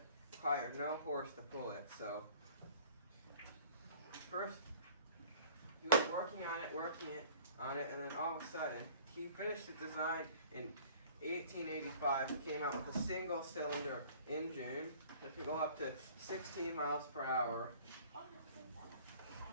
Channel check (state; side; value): inverted; both; correlation -0.49